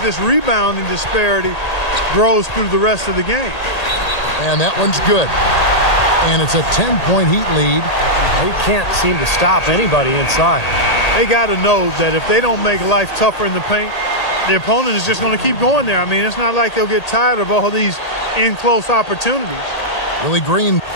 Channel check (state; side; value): late; right; 1.8 ms